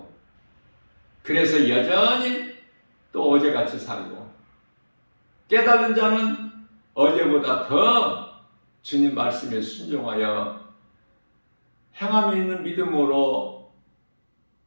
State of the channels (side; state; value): both; inverted; correlation -1.00